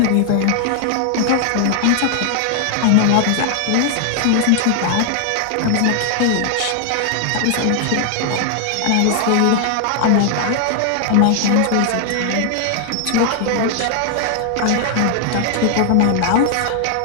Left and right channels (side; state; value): both; different; correlation 0.00